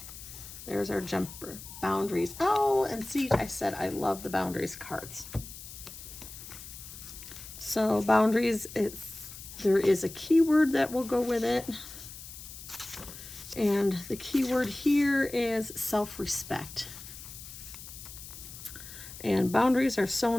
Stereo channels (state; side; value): noise; left; hiss, 13 dB below the sound